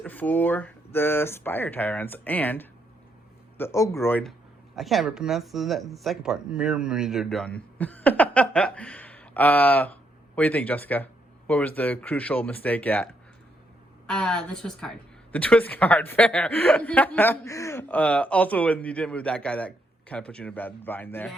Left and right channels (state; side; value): normal; both; correlation 0.76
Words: for the Spire Tyrants and the Ogroid. I can't ever pronounce the second part. Mymidon. What do you think, Jessica? What was the crucial mistake at? The twist card. The twist card, fair. Also, when you didn't move that guy, that kind of put you in a bad bind there.